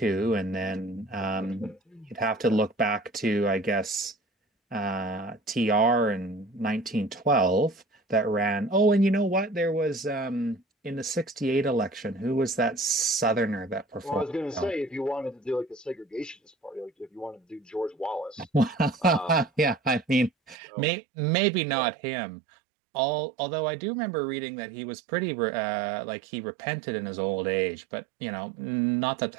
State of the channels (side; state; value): left; drops out; at 20.6 s